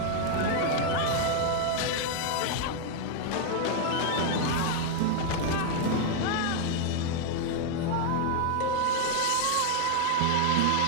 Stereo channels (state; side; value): different; both; correlation 0.00